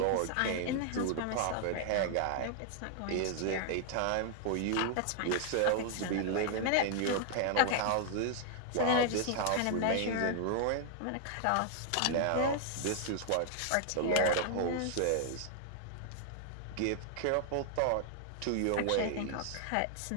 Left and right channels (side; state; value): both; different; correlation 0.00